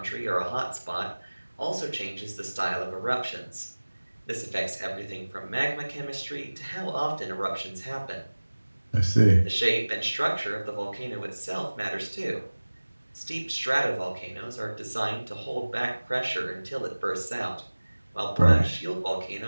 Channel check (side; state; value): both; inverted; correlation -1.00